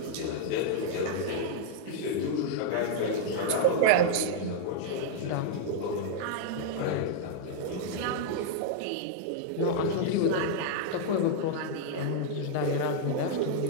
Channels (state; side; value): different; both; correlation -0.01